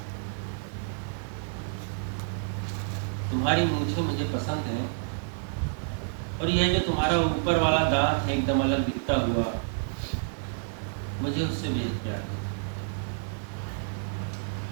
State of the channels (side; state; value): left; silent; digital silence